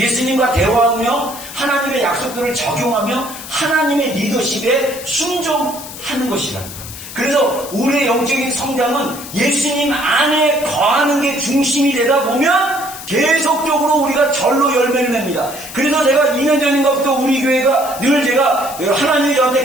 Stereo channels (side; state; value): left; noise; hiss, 12 dB below the sound